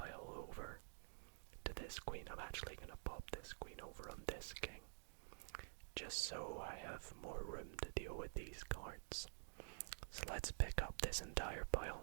over to this queen. I'm actually going to pop this queen over on this king, just so I have more room to deal with these cards. So let's pick up this entire pile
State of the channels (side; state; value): left; silent; digital silence